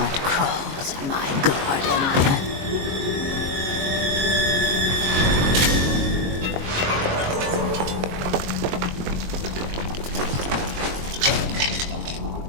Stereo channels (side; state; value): left; late; 22 ms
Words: crawls in my garden?